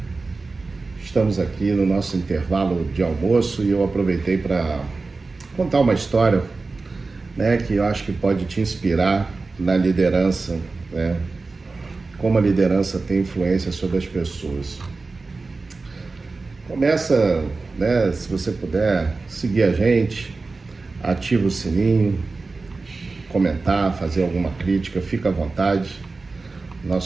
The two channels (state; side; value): quieter; left; 3.8 dB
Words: Estamos aqui no nosso intervalo de almoço e eu aproveitei para contar uma história, que eu acho que pode te inspirar na liderança, como a liderança tem influência sobre as pessoas. Começa, se você puder, seguir a gente, ativa o sininho, comentar, fazer alguma crítica, fica à vontade.